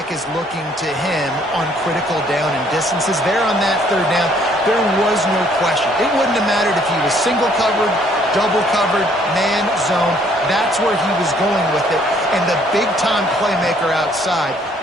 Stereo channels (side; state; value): both; normal; correlation 0.63